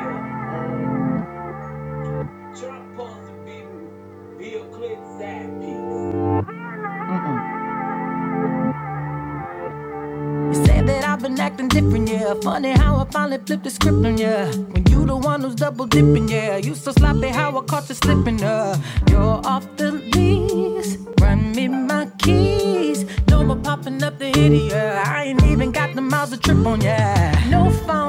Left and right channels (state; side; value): identical; both; correlation 1.00